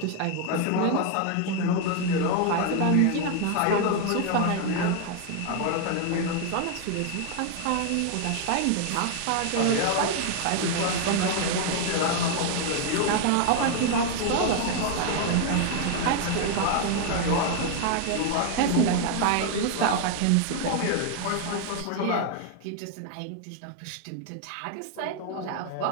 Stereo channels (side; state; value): both; different; correlation 0.01